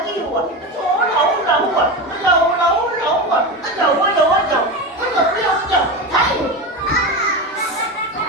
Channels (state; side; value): normal; both; correlation 0.21